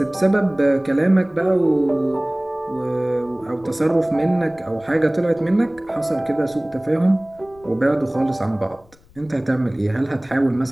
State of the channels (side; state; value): left; noise; rumble, 28 dB below the sound